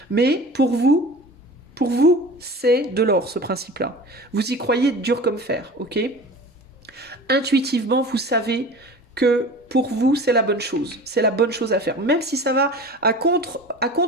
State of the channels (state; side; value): normal; both; correlation 0.38